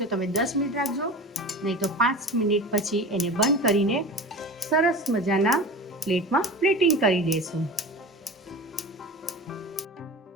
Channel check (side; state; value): both; normal; correlation 0.33